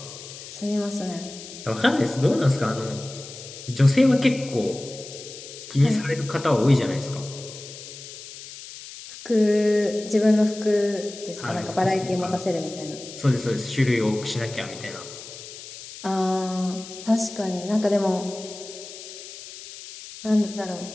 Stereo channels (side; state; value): left; noise; hiss, 14 dB below the sound